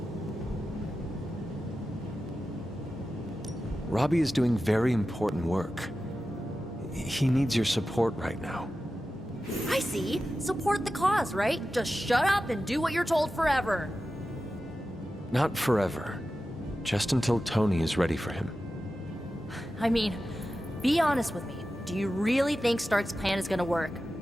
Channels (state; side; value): normal; both; correlation 0.93